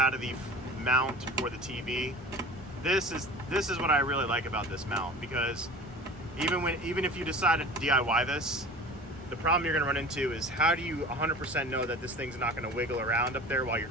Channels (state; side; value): normal; both; correlation 0.38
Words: of the mount for the TV. This is what I really like about this mount, because even if you decide to DIY this, the problem you're going to run into is how do you 100% know that this thing's not going to wiggle around up there while you're